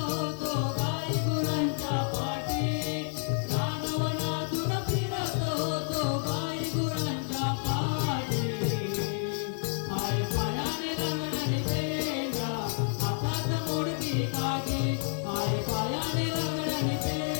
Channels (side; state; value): right; silent; 58 dB below the other